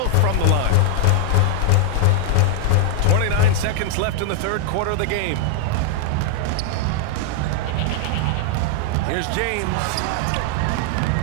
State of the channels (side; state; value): both; different; correlation 0.00